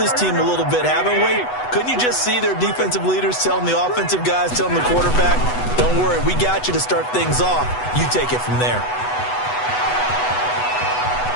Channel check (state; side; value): late; right; 8.1 ms